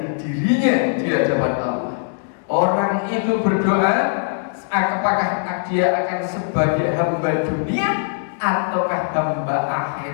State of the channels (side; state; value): right; silent; digital silence